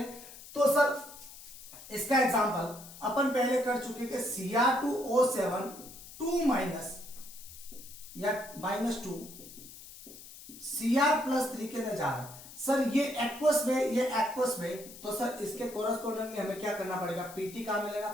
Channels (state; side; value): noise; left; hiss, 16 dB below the sound